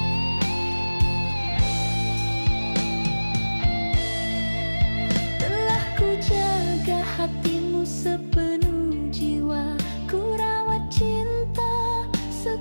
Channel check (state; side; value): inverted; both; correlation -1.00